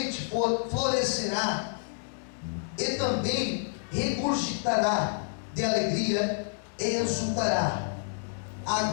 florescerá e também regurgitará de alegria e exultará. A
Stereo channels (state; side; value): silent; right; digital silence